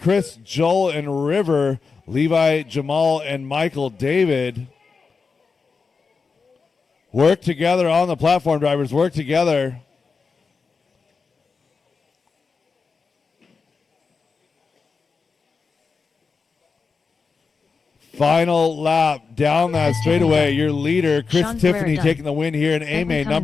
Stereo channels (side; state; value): right; quieter; 4.9 dB